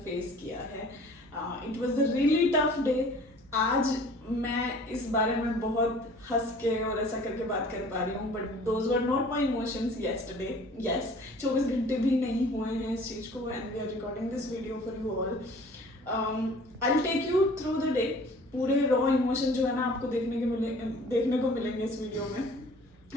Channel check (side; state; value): both; normal; correlation 0.49